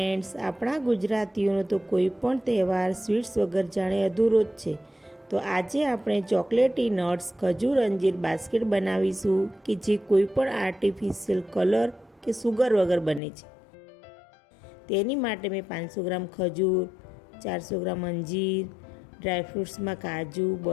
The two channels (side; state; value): right; drops out; at 13.2 s